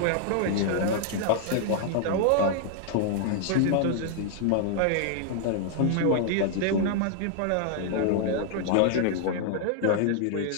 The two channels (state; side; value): different; both; correlation 0.00